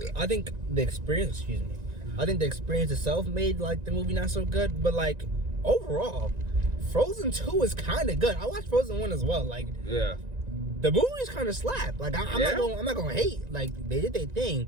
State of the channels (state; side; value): late; left; 1.9 ms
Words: I think the experience, I think the experience itself made like the movie not so good, but like overall, Frozen 2 is kind of good. I watched Frozen 1 as well. Like, yeah, the movie's kind of slap. Like, I'm not gonna hate. Like, they did their thing.